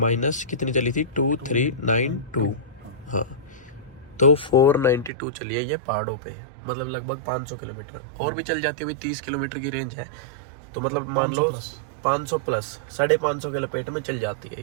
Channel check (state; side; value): drops out; left; at 5.1 s